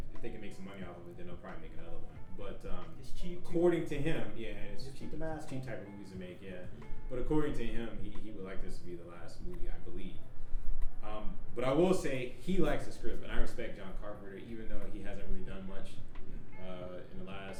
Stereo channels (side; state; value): both; identical; correlation 1.00